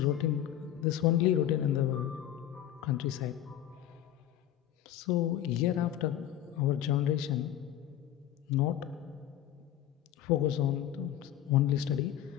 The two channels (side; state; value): right; quieter; 11.6 dB